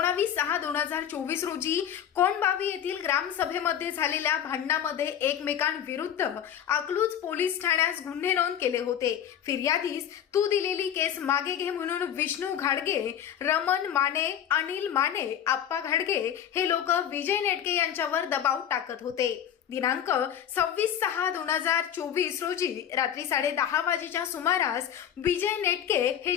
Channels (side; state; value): right; quieter; 9.7 dB